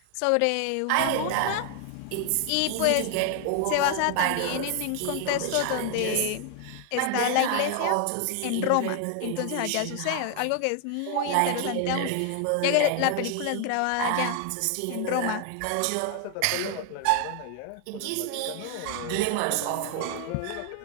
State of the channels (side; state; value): both; different; correlation 0.00